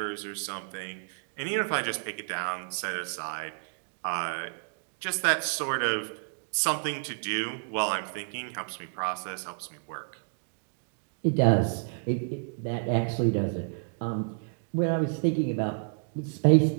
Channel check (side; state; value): left; silent; digital silence